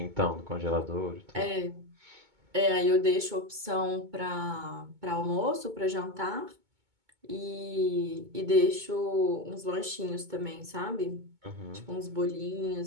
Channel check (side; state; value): left; late; 2.2 ms